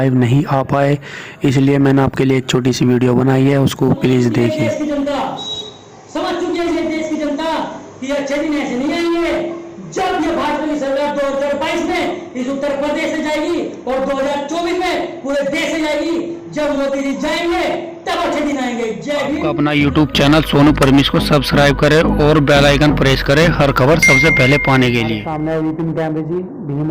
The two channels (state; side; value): identical; both; correlation 1.00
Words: नहीं आ पाए, इसलिए मैंने आपके लिए एक छोटी सी वीडियो बनाई है, उसको प्लीज़ देखिए। देश की जनता समझ चुकी है ये देश की जनता कि अच्छे दिन ऐसे नहीं आएंगे। जब ये भाजपा की सरकार 2022 में इस उत्तर प्रदेश से जाएगी और 2024 में पूरे देश से जाएगी, जब मोदी जी जाएंगे तब अच्छे दिन आएंगे। जय भीम। अपना यूट्यूब चैनल सोनू परमेश को सब्सक्राइब करें और बेल आइकन प्रेस करें हर खबर सबसे पहले पाने के लिए। सामने विपिन कैमरे जी, भीम